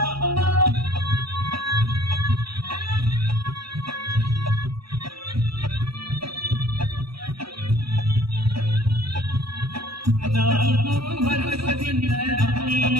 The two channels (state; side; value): late; left; 0.75 ms